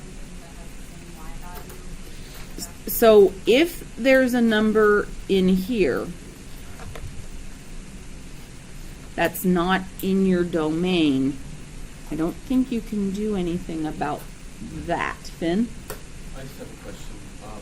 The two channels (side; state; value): both; identical; correlation 1.00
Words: that has the same y value? So if there's a number in here that's not in your domain, I don't think you can do anything about that. Finn? I just have a question.